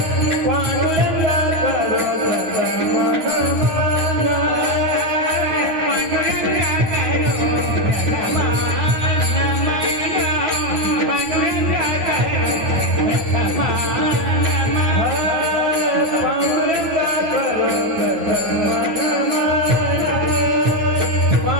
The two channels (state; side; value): late; left; 9.4 ms